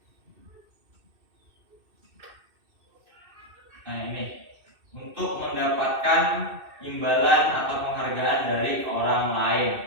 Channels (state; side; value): late; left; 2.6 ms